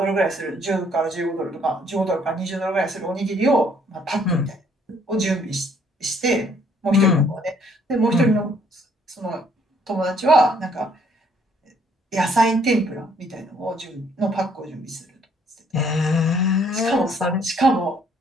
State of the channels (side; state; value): both; normal; correlation 0.64